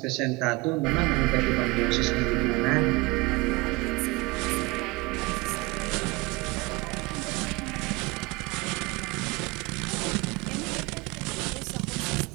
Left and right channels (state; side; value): quieter; left; 24.0 dB